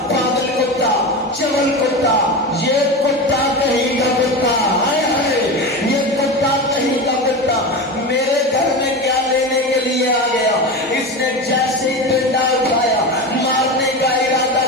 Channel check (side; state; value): both; normal; correlation 0.24